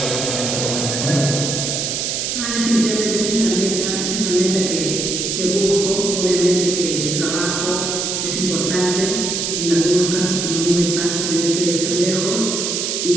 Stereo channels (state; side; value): noise; right; hiss, 1 dB below the sound